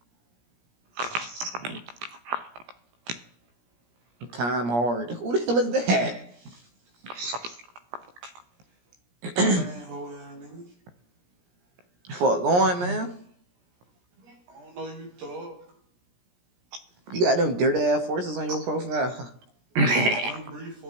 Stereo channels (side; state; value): left; late; 17 ms